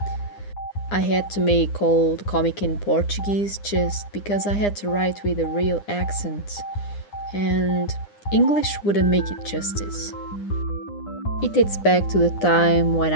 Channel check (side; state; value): right; late; 9.8 ms